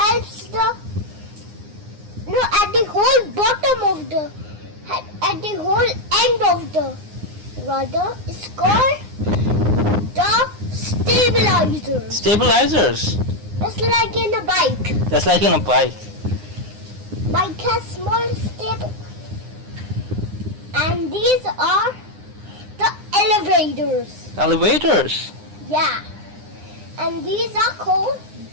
at the whole bottom of at the whole end of the rudder is called the stabilizers. Stabilizers. Just like in a bike. Just like in a bike. Bike has small stabilizers. And these are the elevators. Elevators. Yeah. And these are called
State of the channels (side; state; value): left; late; 9.7 ms